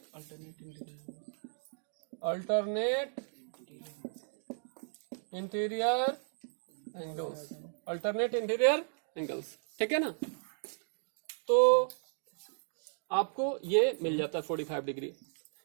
alternate interior angles, alternate interior angles. ठीक है ना, तो आपको ये मिल जाता है 45 डिग्री।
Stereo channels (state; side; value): silent; left; digital silence